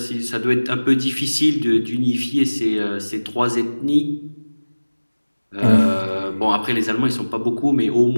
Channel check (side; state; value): both; inverted; correlation -1.00